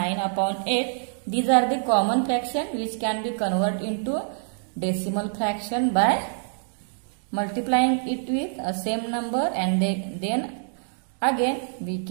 upon 8. These are the common fraction which can be converted into decimal fraction by multiplying it with a same number, and then again we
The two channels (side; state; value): left; silent; digital silence